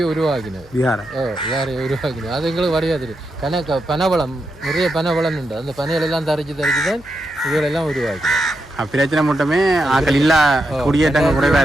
உருவாக்கினது. யாரை உருவாக்கினது அது எங்களுக்கு வரையாது. பனவளம் நிறைய பனவளம் உண்டு. அந்த பனைகளெல்லாம் தரிச்சு தான் இதுகளெல்லாம் உருவாக்கினது. பிரச்சனை மட்டுமே ஆக்கள் இல்லா குடியேற்றங்கள் குறைவா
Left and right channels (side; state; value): left; noise; hum, 23 dB below the sound